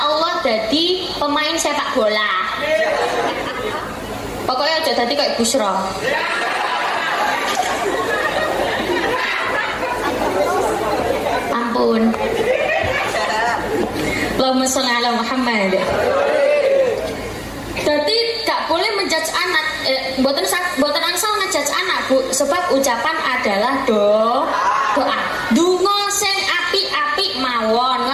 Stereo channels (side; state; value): both; identical; correlation 1.00